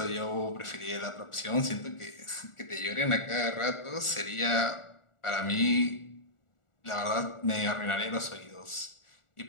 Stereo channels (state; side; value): late; right; 1.4 ms